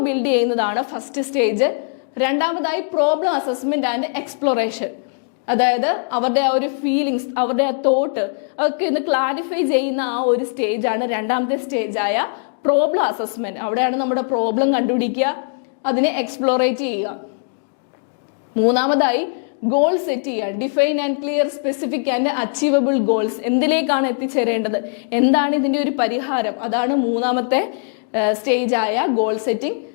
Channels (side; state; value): right; silent; 66 dB below the other